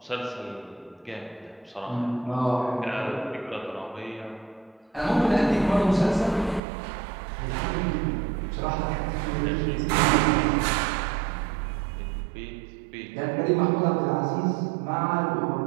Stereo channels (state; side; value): drops out; left; at 6.6 s